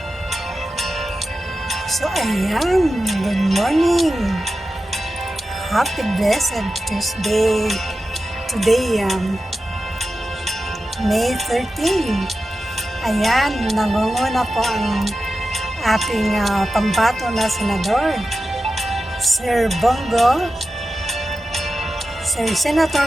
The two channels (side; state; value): both; normal; correlation 0.92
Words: So, ayan. Good morning. Happy blessed Tuesday. Today, May 13. Ayan, nangunguna po ang ating pambato na senador, Sir Bongo, Sir